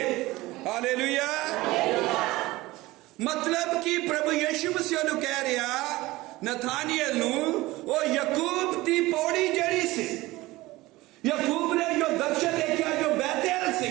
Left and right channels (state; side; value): quieter; left; 19.3 dB